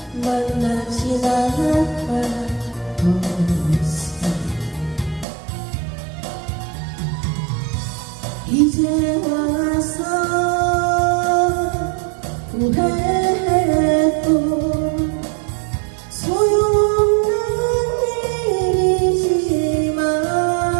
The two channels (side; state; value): left; drops out; at 5.2 s